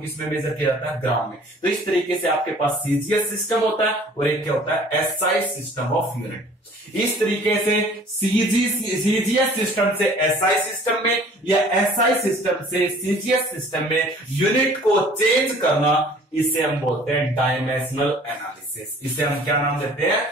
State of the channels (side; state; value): both; normal; correlation 0.51